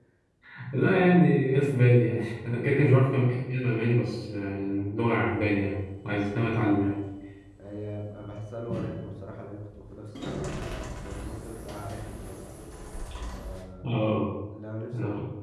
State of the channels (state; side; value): identical; both; correlation 1.00